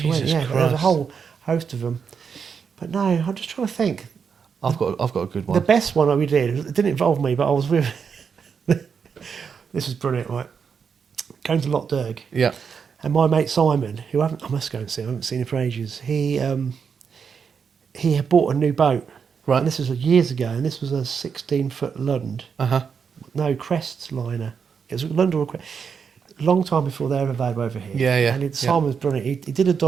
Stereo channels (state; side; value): quieter; left; 6.4 dB